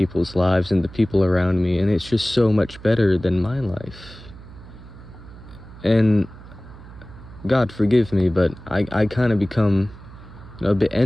lives and the people around me, and it's just so much better than my life. And God forgive me, but I kind of become, you know, a bit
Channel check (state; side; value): noise; right; hum, 18 dB below the sound